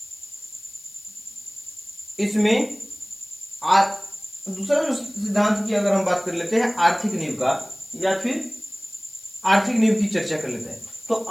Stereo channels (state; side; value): noise; left; hiss, 22 dB below the sound